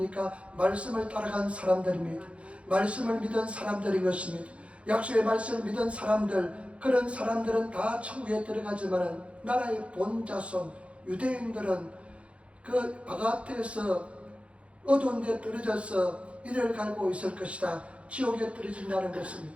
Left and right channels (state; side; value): late; left; 0.061 ms